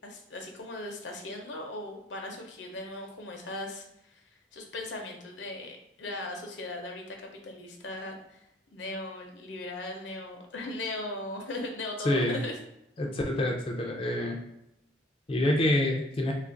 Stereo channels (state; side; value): normal; both; correlation 0.57